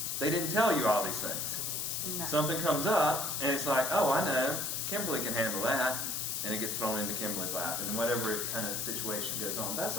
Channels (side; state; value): left; noise; hiss, 1 dB below the sound